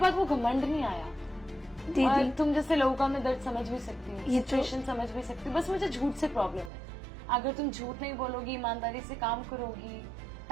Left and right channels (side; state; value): left; drops out; at 6.7 s